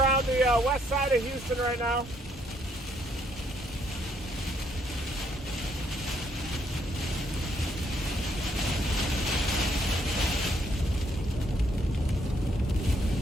the west side of Houston right now.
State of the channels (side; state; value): both; normal; correlation 0.71